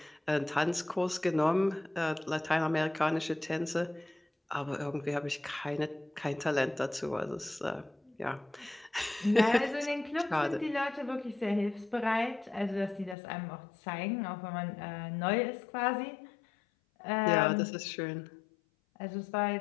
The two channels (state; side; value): drops out; right; at 13.2 s